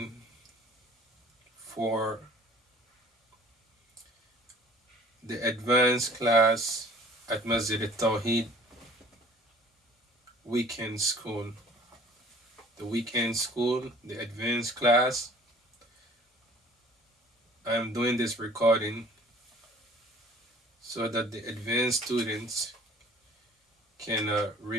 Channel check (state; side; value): normal; both; correlation 0.50